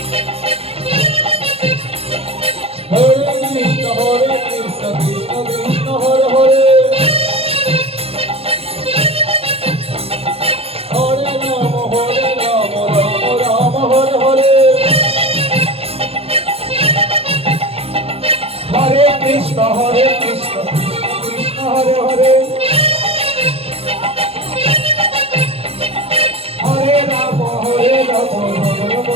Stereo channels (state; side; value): late; left; 0.29 ms